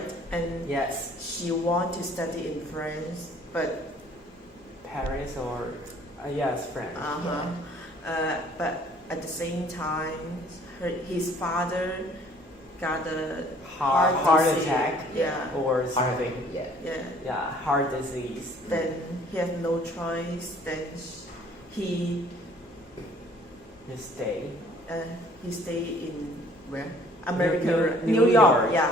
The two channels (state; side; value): normal; both; correlation 0.56